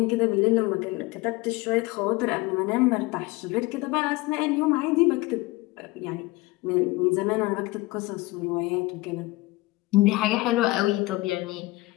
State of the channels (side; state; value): right; quieter; 20.9 dB